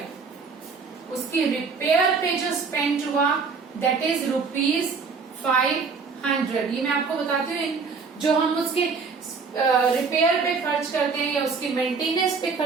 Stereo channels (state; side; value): quieter; left; 5.0 dB